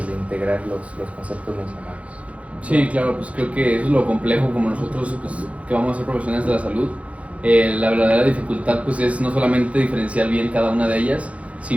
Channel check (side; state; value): left; late; 0.064 ms